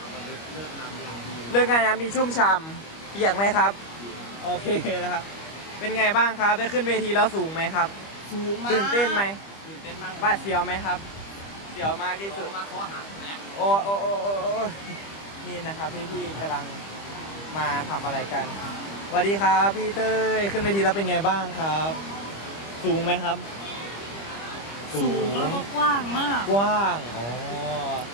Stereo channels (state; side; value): late; right; 25 ms